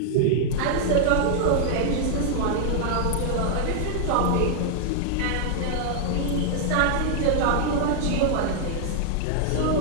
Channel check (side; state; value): both; different; correlation -0.01